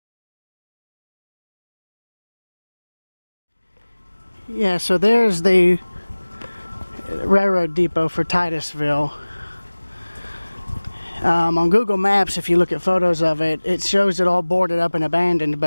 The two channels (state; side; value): inverted; both; correlation -1.00